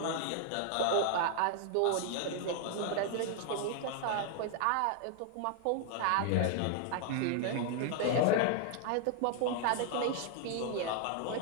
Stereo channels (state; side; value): different; both; correlation 0.00